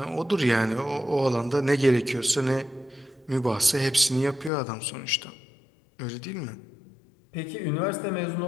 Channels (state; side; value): drops out; right; at 4.5 s